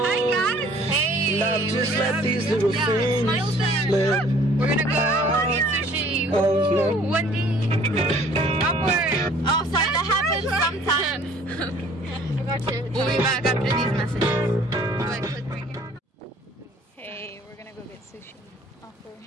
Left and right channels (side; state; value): both; normal; correlation 0.54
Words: guys. Hey. Love, just let these little things slip. We're gonna go eat sushi. Oh, no. One day. Upward. Oh, sorry, that happens sometimes. We'll be back after these messages. Go ahead, click right here. Hey, we're gonna go get sushi. Awkward.